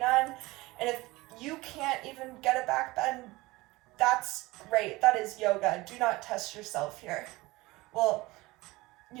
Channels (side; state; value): left; quieter; 20.9 dB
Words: And if you can't even get a back bend, that's great, that is yoga. Do not test yourself here. Well,